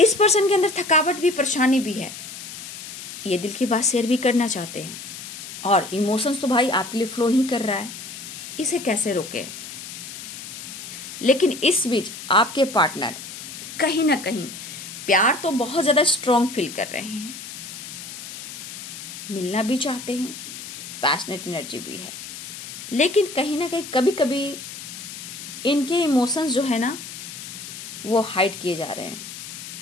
पर्सन के अंदर थकावट भी, परेशानी भी है, ये दिल की बात शेयर भी करना चाहते हैं और इमोशंस तो भाई आपके लिए फ्लो ही कर रहा है, इसे कैसे रोके। लेकिन इस बीच आपके पार्टनर कहीं ना कहीं प्यार तो बहुत ज्यादा स्ट्रॉन्ग फील कर रहे हैं, मिलना भी चाहते हैं, पैशनेट एनर्जी भी है, लेकिन कहीं ना कहीं कभी कभी इनके इमोशंस जो है ना वो हाइड किए जा रहे हैं।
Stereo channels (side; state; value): left; noise; hiss, 11 dB below the sound